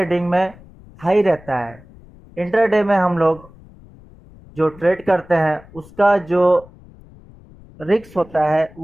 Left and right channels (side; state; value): left; noise; rumble, 23 dB below the sound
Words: में हाई रहता है। इंट्राडे में हम लोग जो ट्रेड करते हैं उसका जो रिस्क होता है